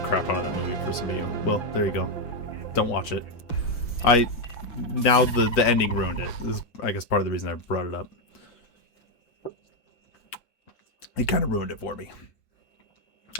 crap out of that movie for some of you. Well, there you go. Don't watch it. Now the ending ruined it. This is, I guess, part of the reason I brought it up. It kind of ruined it for me.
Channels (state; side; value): late; right; 6.0 ms